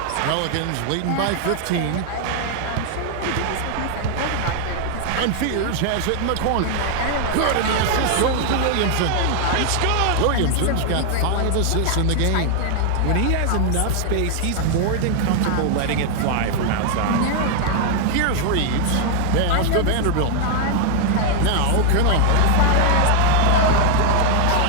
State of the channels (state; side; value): different; both; correlation 0.00